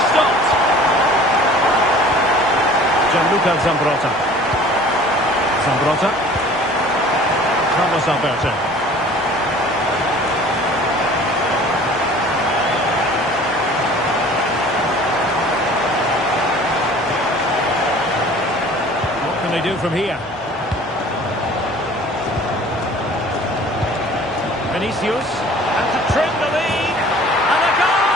stopped? Gianluca Zambrotta. Zambrotta. Carlos Alberto. What can they do from here? Vinicius, and to trim the lead, and a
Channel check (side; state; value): both; normal; correlation 0.48